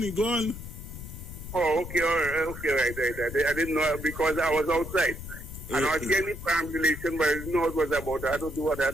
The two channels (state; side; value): noise; left; rumble, 10 dB below the sound